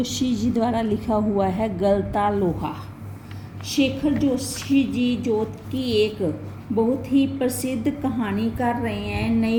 जी द्वारा लिखा हुआ है गलता लोहा। शेखर जोशी जी जो कि एक बहुत ही प्रसिद्ध कहानीकार रहे हैं,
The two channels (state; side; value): identical; both; correlation 1.00